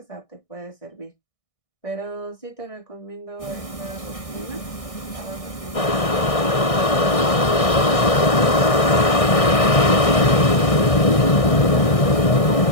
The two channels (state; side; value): late; right; 1.6 ms